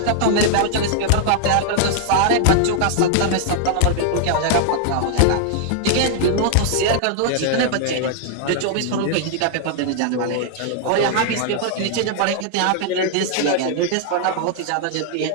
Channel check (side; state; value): both; different; correlation 0.00